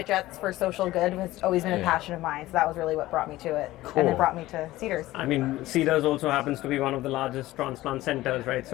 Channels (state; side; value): quieter; right; 16.8 dB